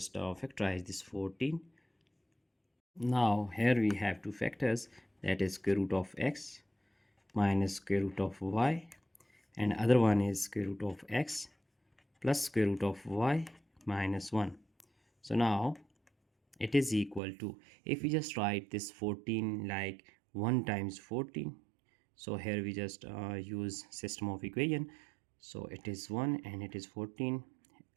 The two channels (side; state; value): left; drops out; at 17.2 s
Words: factorize this 14. Now here we have two factors, that is square root of x minus square root of y, and other one is square root of x plus square root of y minus 1. So now it is equal to, if we just write this 14 like 1 times 14, so here we just use system of equation, so it is 1 and it is 14.